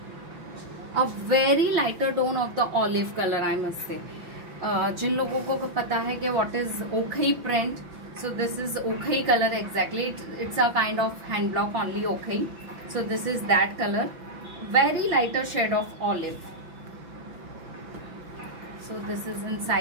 a very lighter tone of the olive color, I must say. जिन लोगों को पता है कि what is ochre print, so this is ochre color exactly. It's a kind of hand block only ochre. So this is that color, very lighter shade of olive. So this is in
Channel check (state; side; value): late; left; 5.7 ms